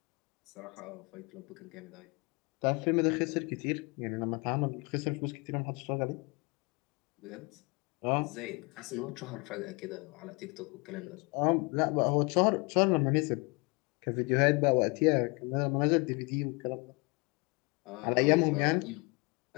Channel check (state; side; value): quieter; right; 29.2 dB